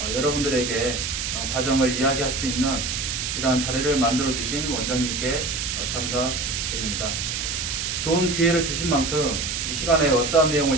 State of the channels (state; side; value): noise; right; hiss, 2 dB below the sound